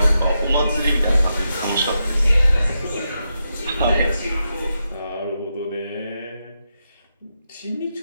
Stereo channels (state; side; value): inverted; both; correlation -0.86